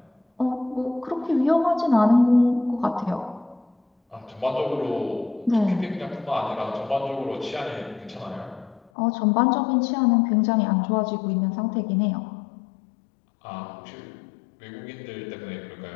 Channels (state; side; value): drops out; right; at 8.9 s